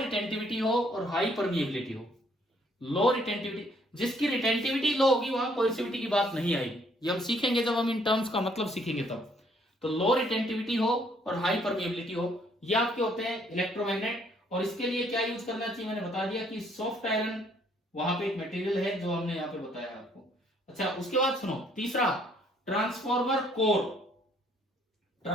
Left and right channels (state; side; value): normal; both; correlation 0.65